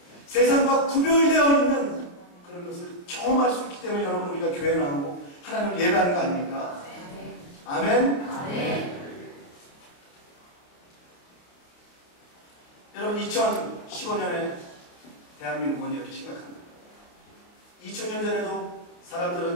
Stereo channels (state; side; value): late; right; 28 ms